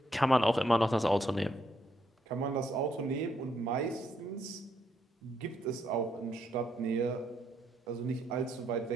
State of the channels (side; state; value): both; normal; correlation 0.75